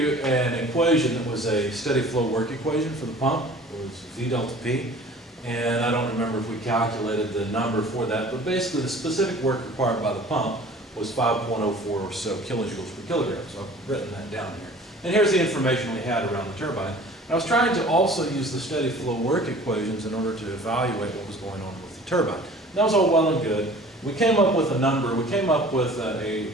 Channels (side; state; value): both; normal; correlation 0.47